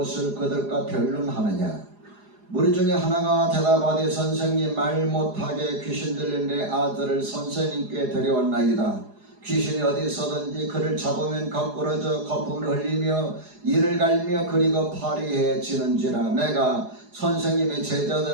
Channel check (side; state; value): left; late; 4.9 ms